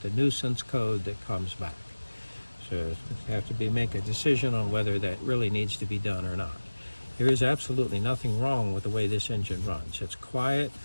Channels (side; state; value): both; inverted; correlation -1.00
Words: a nuisance code that comes back. So you have to make a decision on whether that really needs to be done or not. There is absolutely nothing wrong with the way this engine runs. It's quiet,